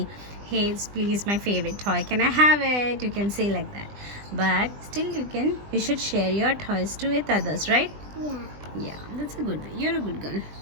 hey, it's please my favorite toy. Can I have it? You can say like that. But still you should share your toys with others, right? Yeah. Yeah, that's a good way. You're a good girl.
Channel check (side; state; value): left; late; 20 ms